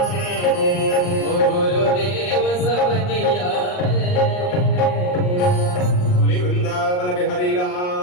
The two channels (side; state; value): right; late; 39 ms